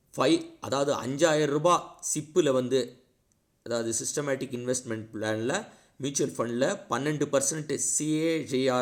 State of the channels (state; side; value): identical; both; correlation 1.00